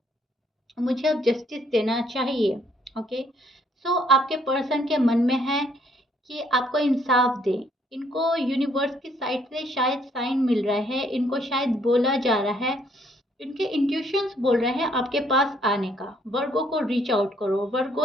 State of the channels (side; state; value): both; normal; correlation 0.67